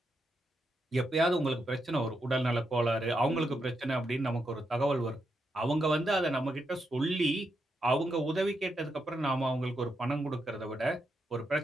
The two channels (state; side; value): normal; both; correlation 0.83